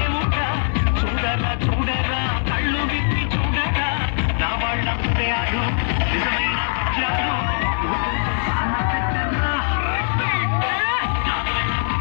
చూడరా చూడరా కళ్ళు విప్పి చూడరా నా వాళ్ళ హృదయాలు నిజమైన వజ్రాలు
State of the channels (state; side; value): silent; right; digital silence